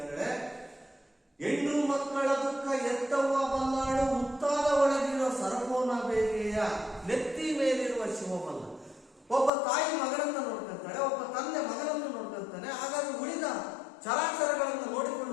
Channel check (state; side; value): drops out; right; at 9.5 s